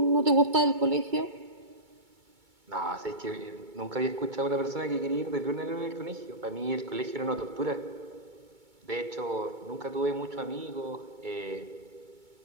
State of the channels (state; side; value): late; left; 2.2 ms